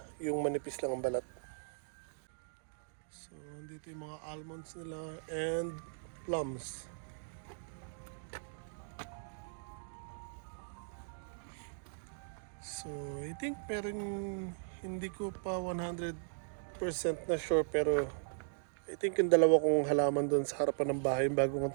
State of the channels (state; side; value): silent; left; digital silence